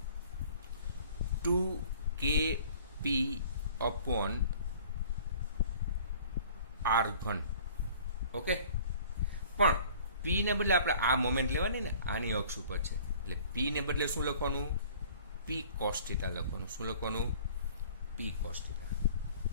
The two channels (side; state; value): both; inverted; correlation -0.50